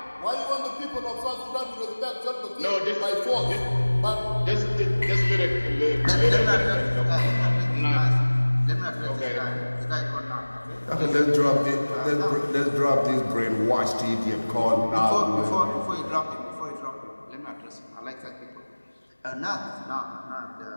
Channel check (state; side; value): inverted; both; correlation -1.00